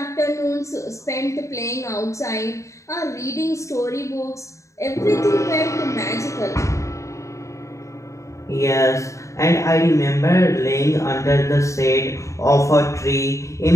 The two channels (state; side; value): late; right; 0.15 ms